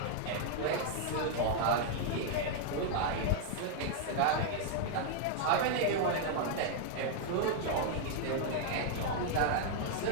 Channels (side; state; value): both; different; correlation 0.00